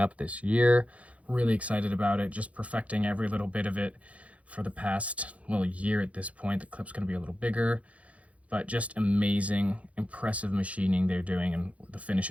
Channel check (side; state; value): left; late; 0.065 ms